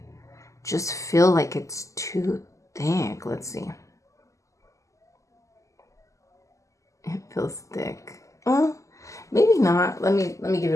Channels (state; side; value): late; right; 0.16 ms